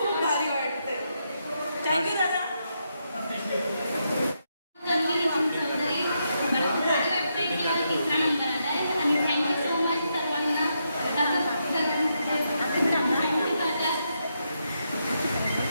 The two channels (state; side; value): inverted; both; correlation -0.81